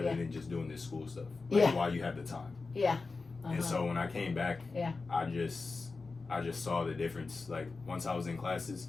than just doing this school stuff. Like while you have the time. And so when I came back, I just saw the difference. Like once I was in classes,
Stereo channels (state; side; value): quieter; right; 4.0 dB